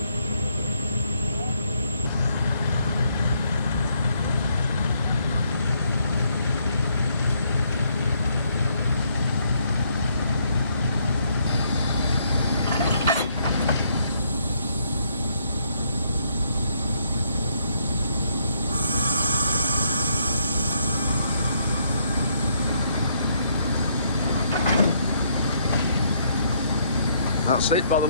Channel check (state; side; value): inverted; both; correlation -0.72